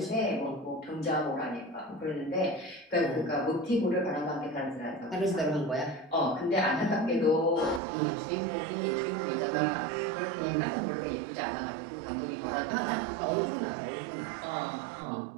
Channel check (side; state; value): left; drops out; at 7.8 s